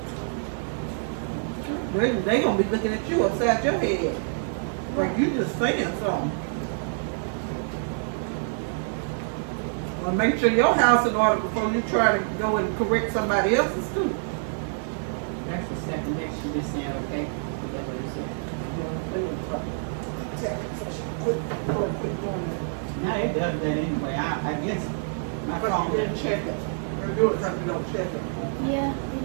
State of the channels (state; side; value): silent; left; 60 dB below the other